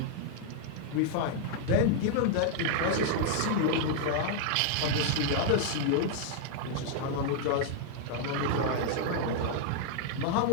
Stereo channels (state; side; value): different; both; correlation 0.00